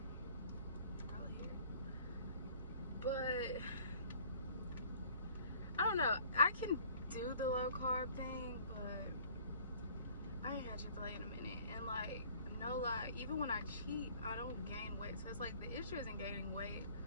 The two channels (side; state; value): both; inverted; correlation -0.53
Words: Probably hair. But I don't know. I can do the low carb thing, but I ain't had Chick-fil-A in a minute. And like, no lie, even when I cheat, I don't gain weight. So it's like the issue isn't gaining weight,